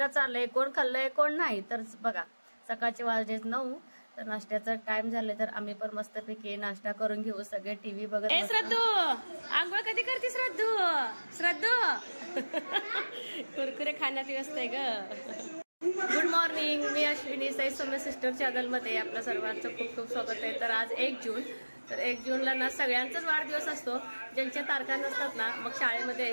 चाललाय. कोण खाल्लंय कोण नाही तर बघा. सकाळचे वाजले 9 तर नाश्त्याचा टाइम झाले तर आम्ही पण मस्तपैकी नाश्ता करून घेऊ. सगळे टीव्ही बघत. श्रद्धू आंघोळ कधी करते? श्रद्धू कुरकुरे खाण्यात व्यस्त आहे ग. गुड मॉर्निंग, मी अश्विनी. साई सौम्य सिस्टर चॅनल मध्ये आपलं सर्वांचं खूप खूप स्वागत आहे. तर आज 1 जून. तर 1 जूनला ना सगळ्यांचाच वाढदिवस असतो. ज्यांच्या तारखा नसतात ना मग शाळेमध्ये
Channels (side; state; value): both; inverted; correlation -1.00